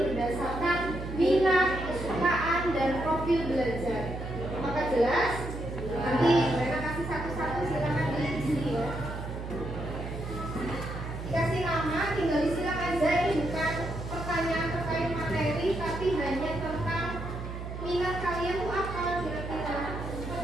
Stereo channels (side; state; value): right; noise; hum, 7 dB below the sound